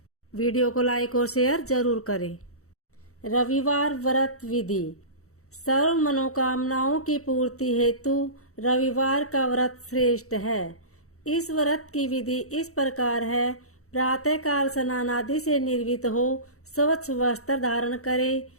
वीडियो को लाइक और शेयर जरूर करें। रविवार व्रत विधि। सर्व मनोकामनाओं की पूर्ति हेतु रविवार का व्रत श्रेष्ठ है। इस व्रत की विधि इस प्रकार है। प्रातःकाल स्नान आदि से निर्वित हो स्वच्छ वस्त्र धारण करे,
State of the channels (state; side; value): late; right; 0.64 ms